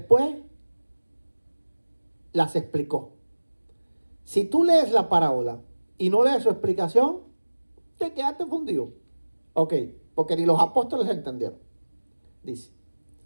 las explicó. Si tú lees la parábola y no lees su explicación, te quedaste fundido. Ok, porque ni los apóstoles entendieron. Dice.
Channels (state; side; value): inverted; both; correlation -1.00